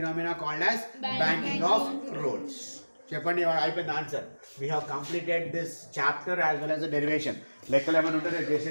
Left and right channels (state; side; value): inverted; both; correlation -1.00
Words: called as banking of roads. చెప్పండి, అయిపోయింది answer. We have completed this chapter as well as the derivation. లెక్కలు ఏమైనా ఉంటే